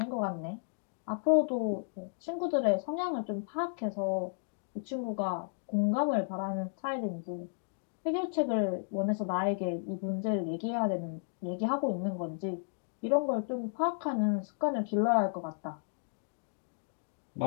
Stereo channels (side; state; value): right; silent; digital silence